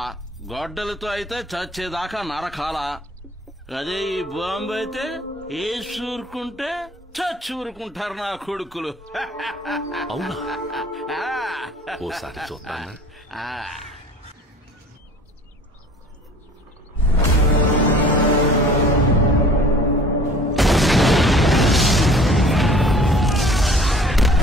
గొడ్డలతో అయితే చచ్చేదాకా నరకాలా. అదే ఈ బాంబు అయితే వేసి ఊరుకుంటే చచ్చి ఊరుకుంటారు నా కొడుకులు. అవునా? ఓసారి చూద్దానా?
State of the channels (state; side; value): normal; both; correlation 0.48